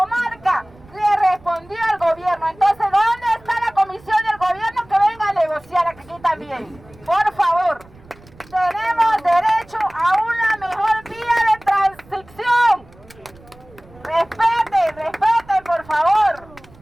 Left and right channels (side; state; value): right; noise; rumble, 25 dB below the sound